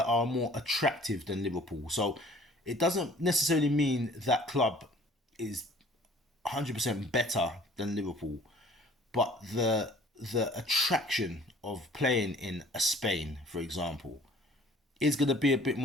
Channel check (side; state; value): both; normal; correlation 0.51